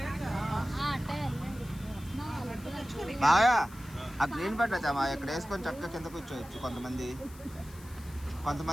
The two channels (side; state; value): left; noise; hiss, 21 dB below the sound